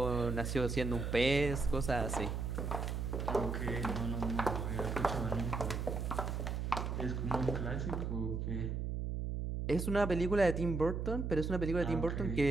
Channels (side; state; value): right; noise; hum, 2 dB below the sound